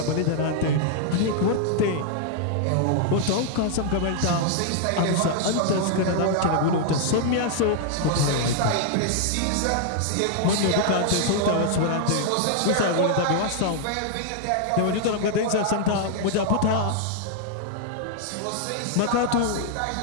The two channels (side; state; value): both; different; correlation 0.00